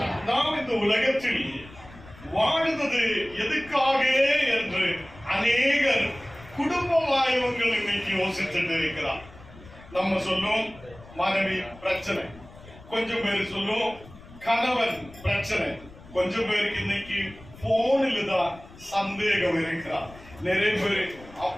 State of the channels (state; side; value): noise; left; rumble, 20 dB below the sound